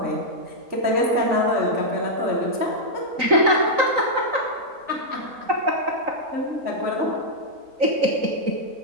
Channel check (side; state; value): left; late; 3.9 ms